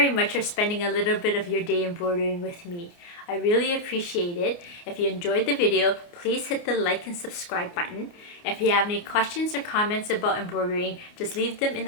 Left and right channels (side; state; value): right; late; 29 ms